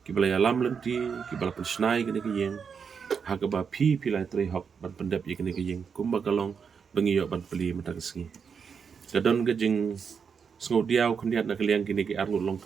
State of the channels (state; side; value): quieter; left; 6.4 dB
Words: ki bela alam lenti ki bela pensnai kene ki yeng ha ka ba pila etre hok ban pendep ye kene ki yeng kumba kalong bengiyo ban peli mata kesengi kadon ka jing Sengo diau kendiat na kaliang kini ki arngut long